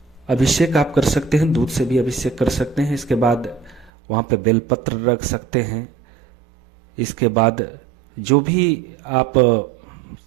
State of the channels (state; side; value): drops out; left; at 3.9 s